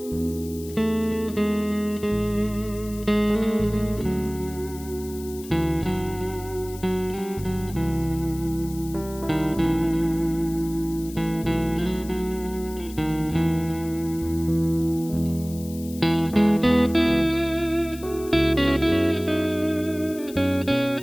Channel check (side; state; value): left; noise; hiss, 17 dB below the sound